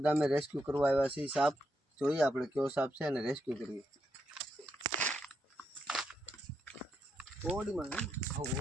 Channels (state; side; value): normal; both; correlation 0.82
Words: ગામે રેસ્ક્યુ કરવા આવ્યા છીએ. સાપ જોઈએ આપણે કયો સાપ છે અને રેસ્ક્યુ કરીએ. ઓડીમાં